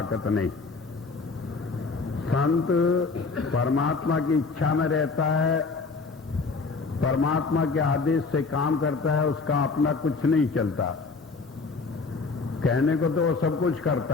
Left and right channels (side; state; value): right; quieter; 4.2 dB